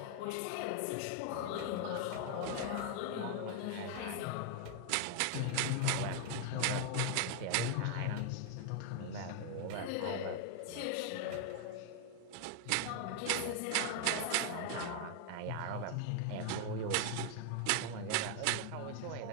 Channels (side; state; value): both; different; correlation 0.00